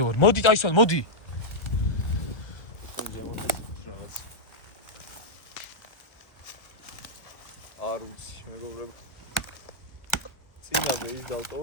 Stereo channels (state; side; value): late; right; 1.1 ms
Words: მოდი ტაისონ, მოდი. ზემოთ რაღაც. არ ვიცი, მეგობრებო. წინაზე ის